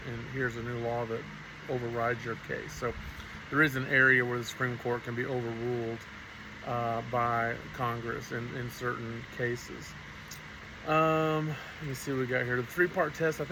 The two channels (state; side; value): identical; both; correlation 1.00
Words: and here's a new law that overrides your case. So there is an area where the Supreme Court can be overruled by Congress in certain cases. Let me see what we got here. The three-part test, I